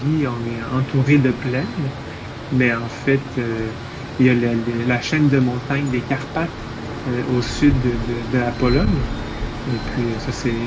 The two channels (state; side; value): identical; both; correlation 1.00